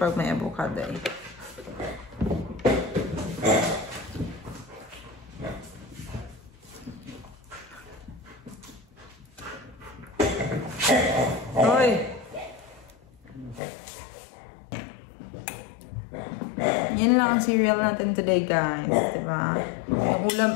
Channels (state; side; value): drops out; right; at 13.6 s